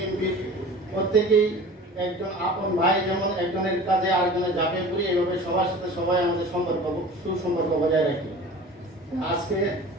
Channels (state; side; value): normal; both; correlation 0.40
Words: প্রত্যেকেই একজন আপন ভাই, যেমন একজনের কাজে আরেকজনের ঝাঁপিয়ে পড়ি, এইভাবে সবার সাথে সবাই আমাদের সুসম্পর্ক বজায় রাখি। আজকে